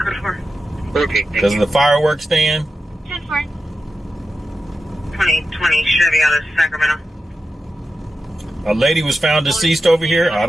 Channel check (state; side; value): normal; both; correlation 0.90